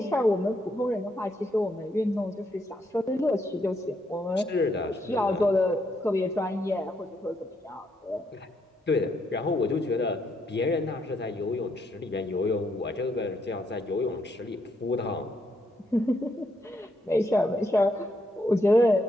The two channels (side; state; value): both; normal; correlation 0.76